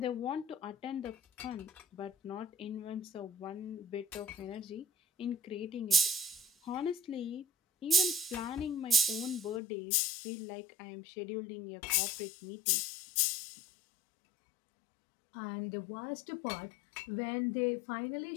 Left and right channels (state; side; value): drops out; right; at 9.6 s